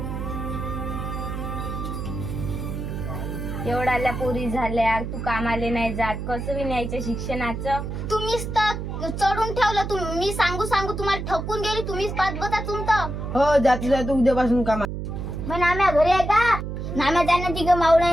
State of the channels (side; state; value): right; noise; hum, 5 dB below the sound